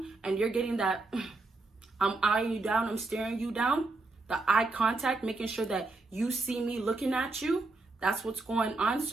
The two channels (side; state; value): left; quieter; 3.4 dB